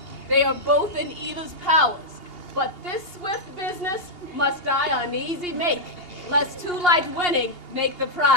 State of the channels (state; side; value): late; right; 2.8 ms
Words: They are both in either's powers, but this swift business must I uneasy make, lest too light winning make the